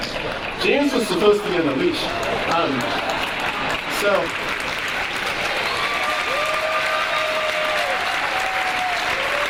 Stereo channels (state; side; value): identical; both; correlation 1.00